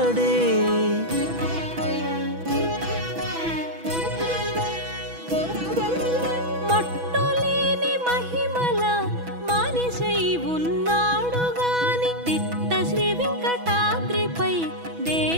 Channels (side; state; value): left; late; 6.1 ms